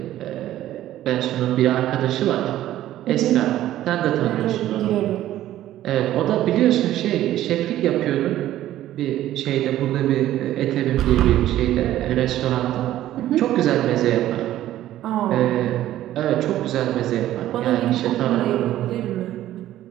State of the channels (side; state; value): left; quieter; 13.5 dB